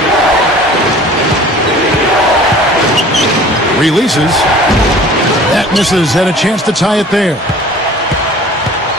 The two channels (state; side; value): normal; both; correlation 0.46